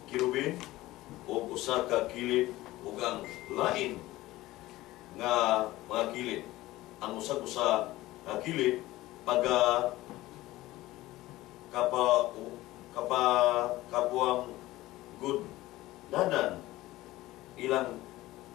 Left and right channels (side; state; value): right; quieter; 17.4 dB